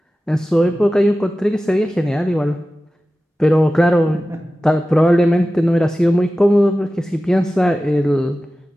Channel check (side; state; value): both; normal; correlation 0.95